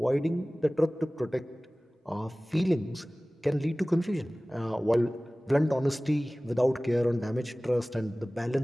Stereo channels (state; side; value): normal; both; correlation 0.98